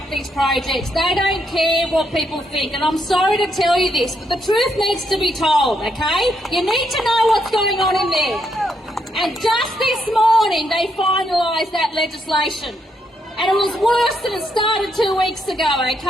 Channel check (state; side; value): normal; both; correlation 0.77